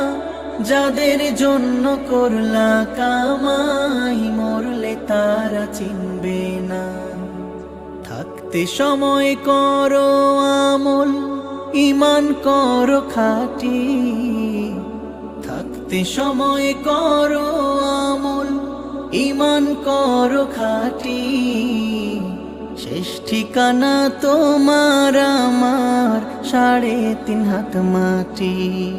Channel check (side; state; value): both; identical; correlation 1.00